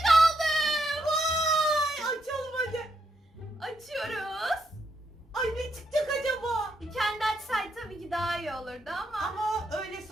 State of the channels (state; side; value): normal; both; correlation 0.78